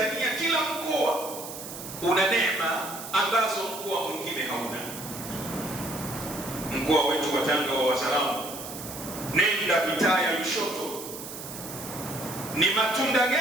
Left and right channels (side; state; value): right; noise; hiss, 10 dB below the sound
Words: kila mkoa una neema ambazo mkoa mwingine hauna. Mkoa wetu wa Tanga wa Wazaramo, nenda mitaa ya Lushoto, ni matunda